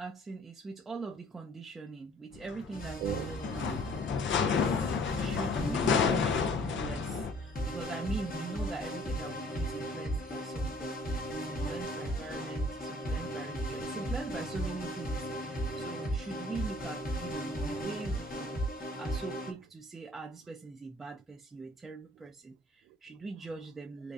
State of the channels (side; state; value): both; normal; correlation 0.55